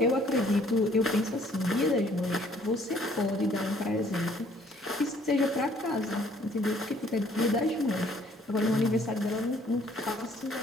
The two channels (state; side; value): normal; both; correlation 0.60